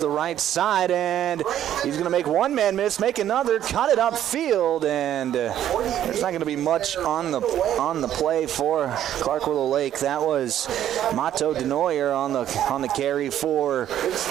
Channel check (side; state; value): left; quieter; 11.2 dB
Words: right side, and he's going to make one man miss, make another, cut it upfield, and there's not going to be much on the play for Clark Willow Lake. That was Mato Denoyer on the carry for